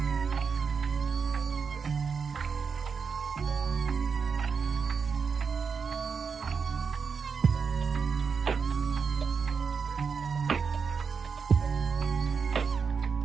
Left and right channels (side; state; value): left; quieter; 5.7 dB